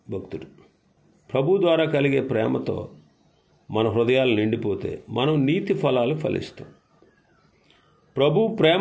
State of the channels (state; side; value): identical; both; correlation 1.00